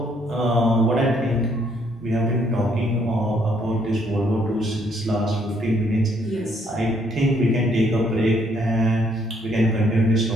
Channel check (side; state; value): both; normal; correlation 0.68